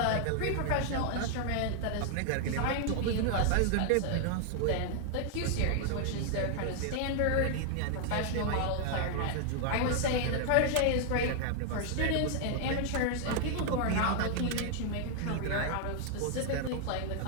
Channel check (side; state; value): both; different; correlation 0.00